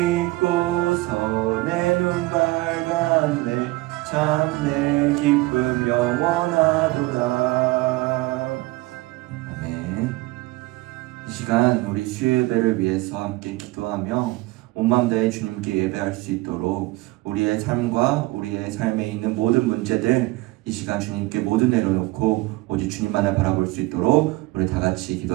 내 눈 밝았네. 참 내 기쁨 영원하도다. 아멘. 이 시간 우리 수요예배를 위해서 함께 기도하며 온 마음 다해 주님께 예배할 수 있도록 우리의 삶과 우리의 삶에 있는 모든 문제들 이 시간 주님께 모두 내려놓고 오직 주님만을 바라볼 수 있도록 우리 다 같이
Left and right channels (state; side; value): quieter; left; 20.9 dB